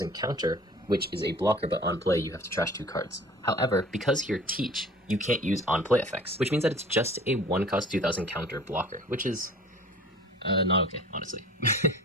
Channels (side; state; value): both; normal; correlation 0.46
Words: counter, which is a blocker, but on play you have to trash 2 cards. However, because you're Teach, you can't use on play effects, which means that it's just a 1-cost 2000 counter blocker, which is not okay, honestly.